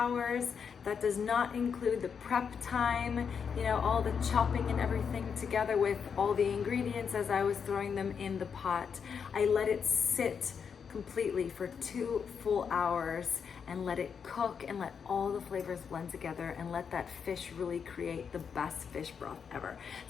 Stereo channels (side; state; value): right; quieter; 6.6 dB